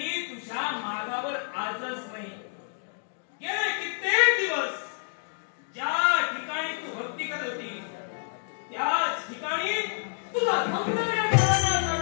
तुझ्या मागावर आजच नाही गेले कित्येक दिवस ज्या ठिकाणी तू भक्ती करत होती त्याच ठिकाणी तुझा सौंदर्य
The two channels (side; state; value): right; silent; 59 dB below the other